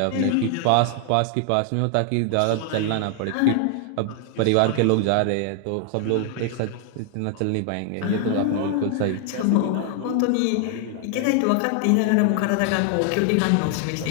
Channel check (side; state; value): both; different; correlation 0.00